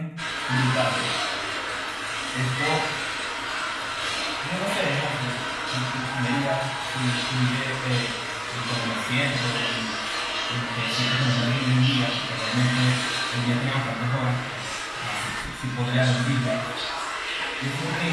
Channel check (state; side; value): identical; both; correlation 1.00